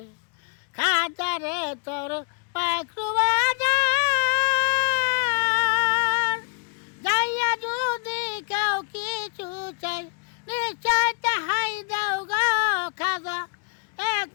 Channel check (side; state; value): right; quieter; 38.0 dB